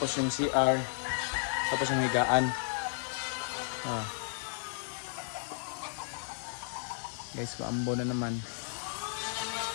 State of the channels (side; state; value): right; silent; digital silence